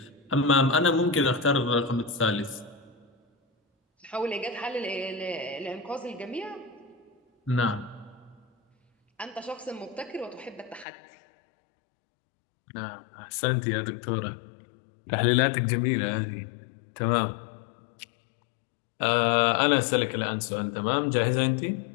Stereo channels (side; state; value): right; drops out; at 10.9 s